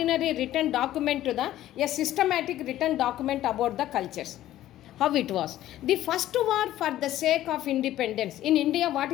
written document to a systematic written document about the cultures. How it was. The first war for the sake of independence. In India, what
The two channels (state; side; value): quieter; right; 13.6 dB